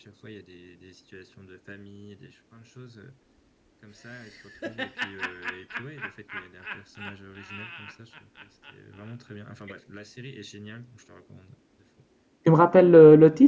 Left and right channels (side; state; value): both; identical; correlation 1.00